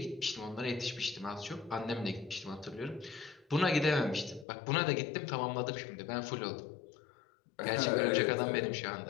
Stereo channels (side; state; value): right; drops out; at 4.5 s